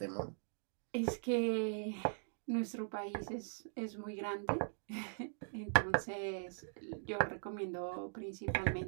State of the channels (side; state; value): left; silent; digital silence